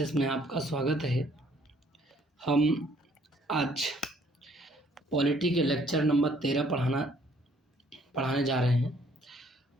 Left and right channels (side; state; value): both; normal; correlation 0.62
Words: में आपका स्वागत है। हम आज पॉलिटी के लेक्चर नंबर 13 पढ़ाने जा रहे हैं।